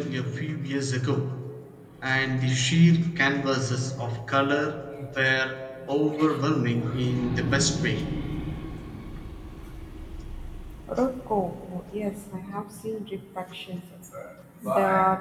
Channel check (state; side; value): identical; both; correlation 1.00